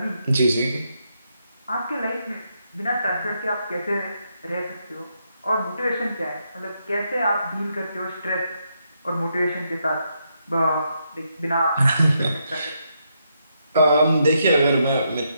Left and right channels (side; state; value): both; inverted; correlation -0.79